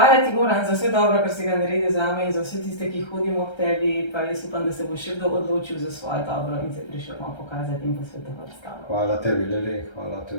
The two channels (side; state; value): right; late; 1.3 ms